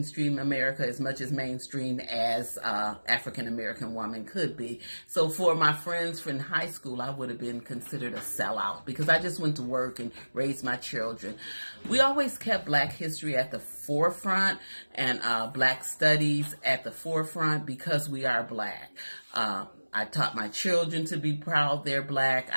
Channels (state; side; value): inverted; both; correlation -1.00